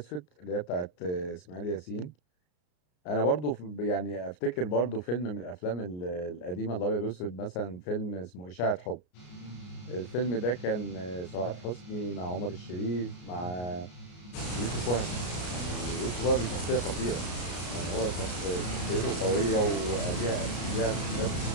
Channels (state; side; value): late; right; 33 ms